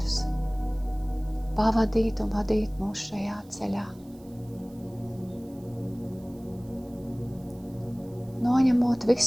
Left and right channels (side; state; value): right; noise; hiss, 28 dB below the sound